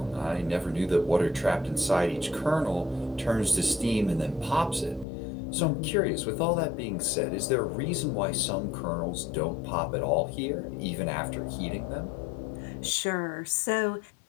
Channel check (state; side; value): drops out; right; at 5.1 s